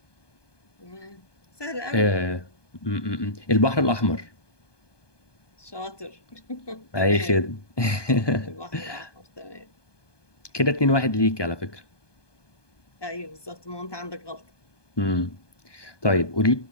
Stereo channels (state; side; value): late; right; 1.2 ms